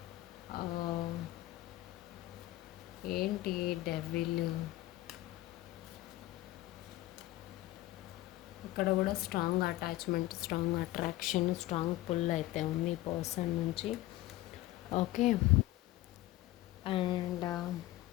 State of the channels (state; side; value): quieter; right; 16.7 dB